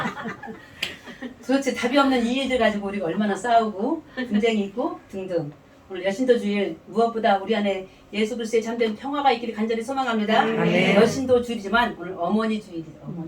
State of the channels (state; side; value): identical; both; correlation 1.00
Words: 도대체 답이 없는 이 일들 가지고 우리가 얼마나 싸우고 분쟁이 있고 등등. 오늘 여신도 주일 무엇보다 우리 안에 예수 그리스도의 참된 평화가 있기를 간절히 소망합니다. 여신도 주일이지만 오늘 어머니 주일이죠.